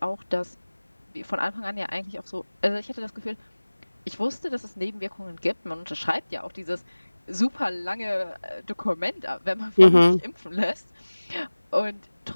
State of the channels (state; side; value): inverted; both; correlation -1.00